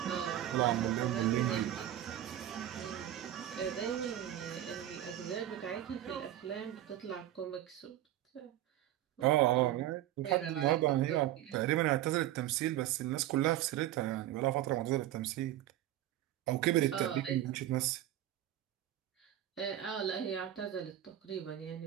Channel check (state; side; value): quieter; left; 12.9 dB